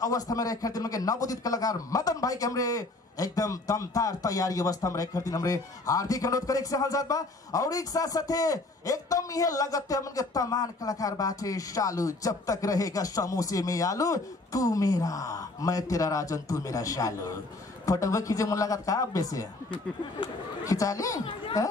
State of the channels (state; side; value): quieter; right; 3.0 dB